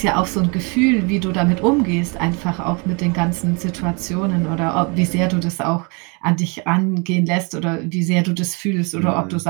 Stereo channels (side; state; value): left; quieter; 31.8 dB